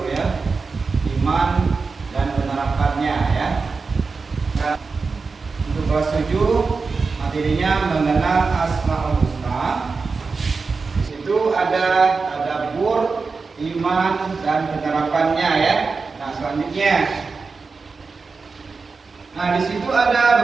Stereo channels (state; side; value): quieter; left; 4.5 dB